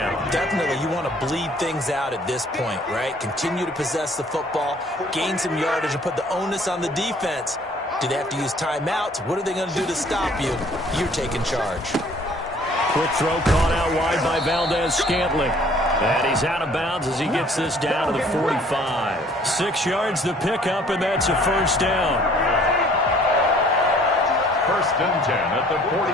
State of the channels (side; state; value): both; normal; correlation 0.57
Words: Definitely, you want to bleed things out at this point, right? Continue to possess the football, gain some yardage, and put the onus on the defense. Do they have to use timeouts? What are they going to do to stop you? You're taking charge. Quick throw caught out wide by Valdez-Scantling. And he's out of bounds as he gets this down to the 45. 6 yards the pickup, and that's a 1st down. 1st and 10 at the